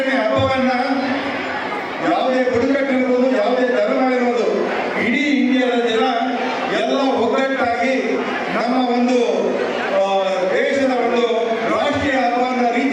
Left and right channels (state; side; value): identical; both; correlation 1.00